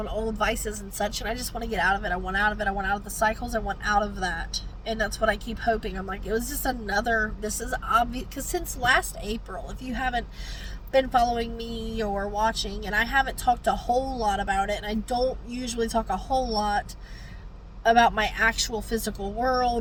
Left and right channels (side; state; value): both; identical; correlation 1.00